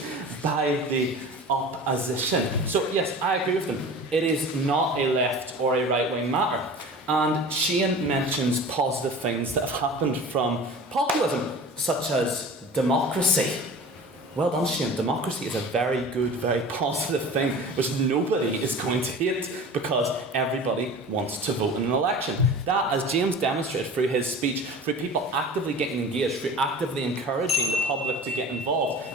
by the opposition. So yes, I agree with them. It is not a left or a right-wing matter. And Shane mentions positive things that have happened from populism, such as democracy. Well done, Shane. Democracy is a very good, very positive thing, which nobody is going to hate because everybody wants to vote in an election. That, as James demonstrated through his speech, through people actively getting engaged, through actively encouraging the public to get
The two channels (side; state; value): both; normal; correlation 0.38